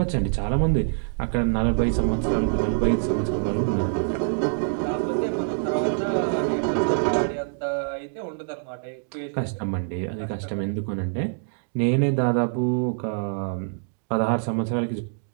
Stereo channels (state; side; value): silent; left; digital silence